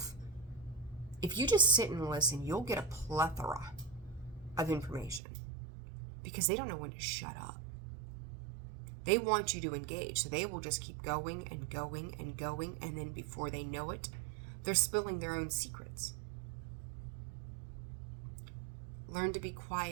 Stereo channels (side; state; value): left; drops out; at 5.2 s